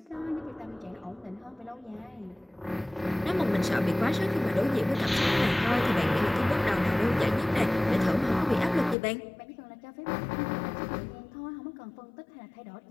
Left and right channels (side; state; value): right; drops out; at 9.0 s